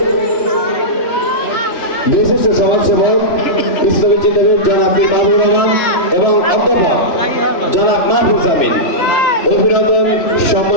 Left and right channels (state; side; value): late; right; 2.9 ms